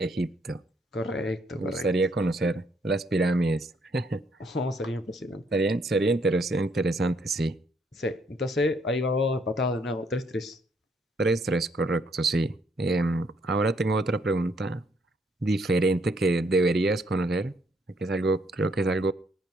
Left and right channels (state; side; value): normal; both; correlation 0.70